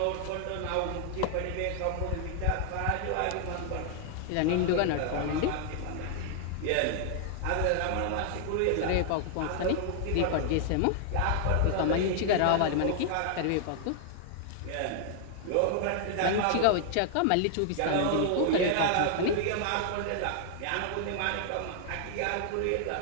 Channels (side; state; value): both; different; correlation 0.00